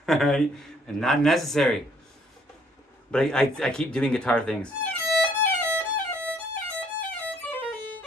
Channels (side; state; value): both; normal; correlation 0.63